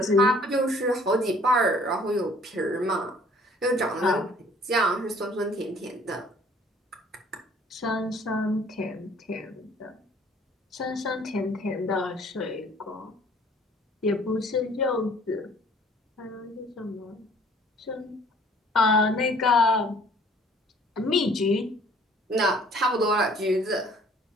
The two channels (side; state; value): both; normal; correlation 0.56